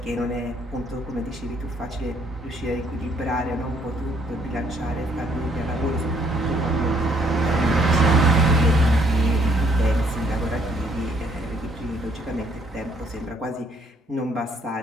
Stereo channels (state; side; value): normal; both; correlation 0.66